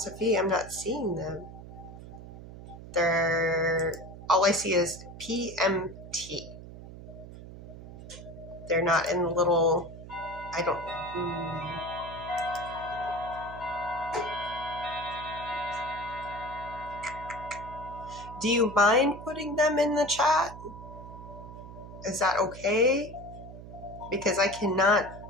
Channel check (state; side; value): noise; right; hum, 14 dB below the sound